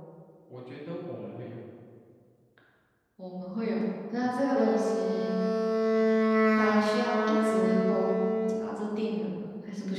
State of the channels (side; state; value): both; identical; correlation 1.00